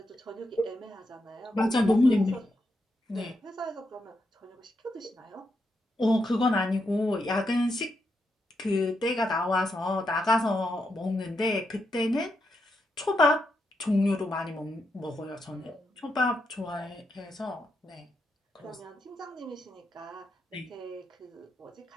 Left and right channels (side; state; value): both; normal; correlation 0.83